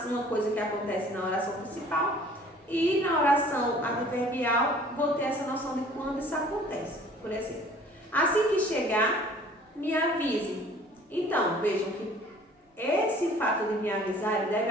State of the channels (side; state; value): both; normal; correlation 0.51